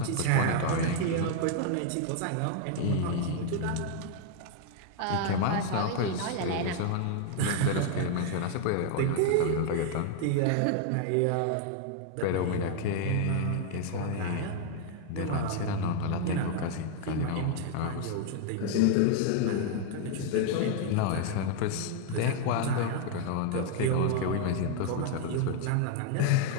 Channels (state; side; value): different; both; correlation 0.00